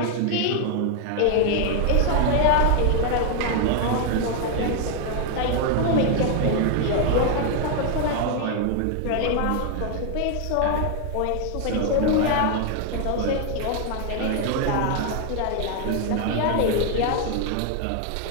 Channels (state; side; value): different; both; correlation 0.00